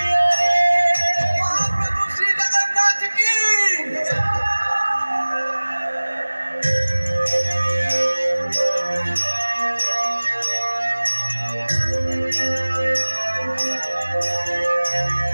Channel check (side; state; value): both; inverted; correlation -1.00